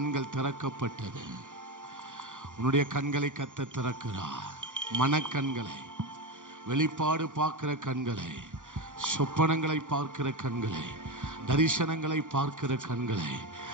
திறக்கப்பட்டது. உன்னுடைய கண்களை கர்த்தர் திறக்கிறார். மனக்கண்களை, வெளிப்பாடு பார்க்கிற கண்களை, சொப்பனங்களை பார்க்கிற கண்களை, தரிசனங்களை பார்க்கிற கண்களை,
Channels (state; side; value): late; left; 0.86 ms